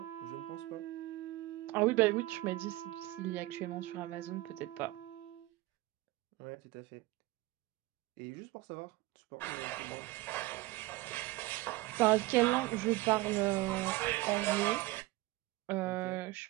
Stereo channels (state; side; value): quieter; left; 19.2 dB